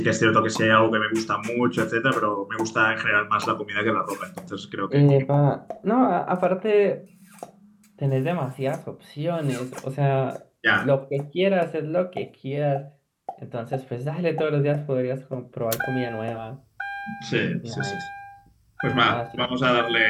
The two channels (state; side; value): identical; both; correlation 1.00